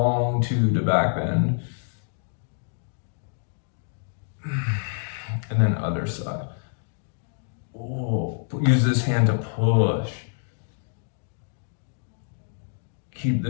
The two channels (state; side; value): silent; right; digital silence